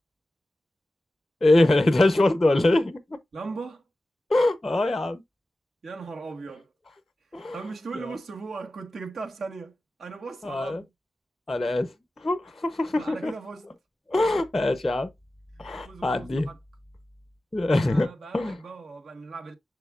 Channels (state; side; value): normal; both; correlation 0.95